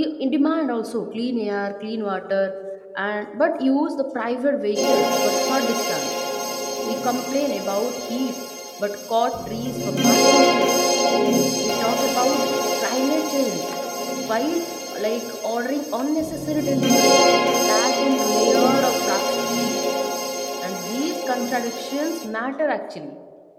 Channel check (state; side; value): identical; both; correlation 1.00